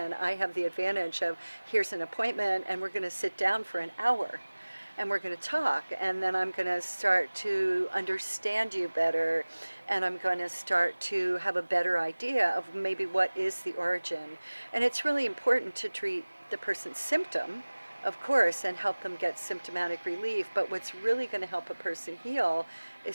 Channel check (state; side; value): inverted; both; correlation -1.00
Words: I have the advantage of here's an appointment, and we're going to sit down for an hour and we're going to talk, and then I'm going to start to understand you better, and I'm going to start to have a better idea of maybe what is the origin. And it's really important to treat the person's symptom, of course, and help them get symptomatic relief, but what's really going to help a person heal